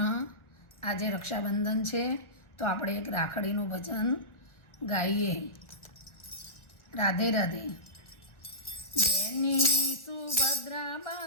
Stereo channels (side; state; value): right; late; 1.3 ms